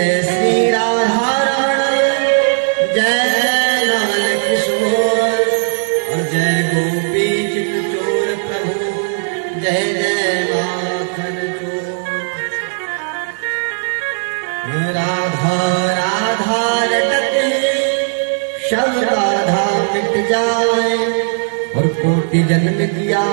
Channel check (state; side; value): silent; left; digital silence